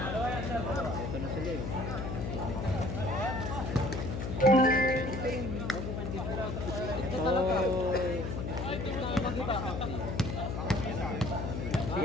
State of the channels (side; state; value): left; noise; hum, 3 dB below the sound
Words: Ito na sila eh. Ito talaga.